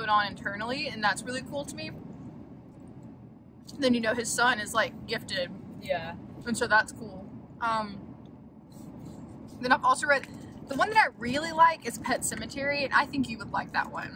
on internally, and that's really cool to me. Then you know his son is like gifted. Yeah. And so that's cool. Then I've also read, the one that I really like is Pet Sematary, and I think you would like that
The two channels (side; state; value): both; identical; correlation 1.00